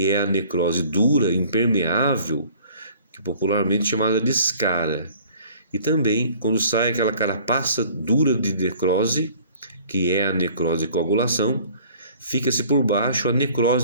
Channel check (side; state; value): both; inverted; correlation -0.52